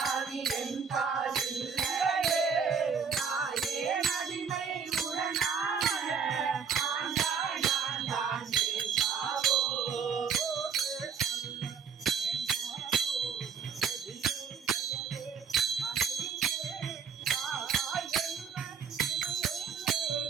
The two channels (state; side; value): quieter; left; 6.5 dB